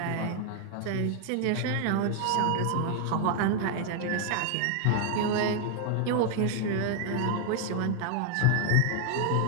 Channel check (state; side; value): different; both; correlation 0.00